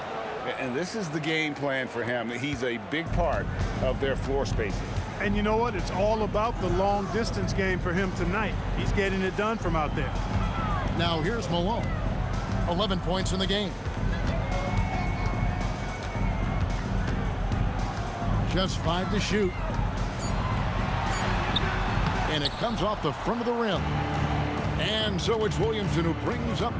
And this is the game plan for him. He's a big part of their floor spacing. And you know what? It's all about the long distance game for him tonight. He's getting it done from out there. Now here's Malone. 11 points in the game. Just 5 to shoot. And it comes off the front of the rim. And so it's Williamson who brings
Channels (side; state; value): both; identical; correlation 1.00